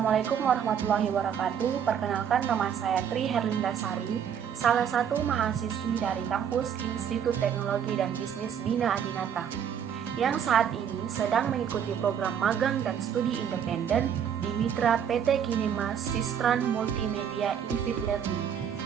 warahmatullahi wabarakatuh. Perkenalkan, nama saya Tri Herlindasari, salah satu mahasiswi dari kampus Institut Teknologi dan Bisnis Bina Adinata, yang saat ini sedang mengikuti program magang dan studi independen di Mitra PT Kinema Sistran Multimedia Infit Learning.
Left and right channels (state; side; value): quieter; left; 8.3 dB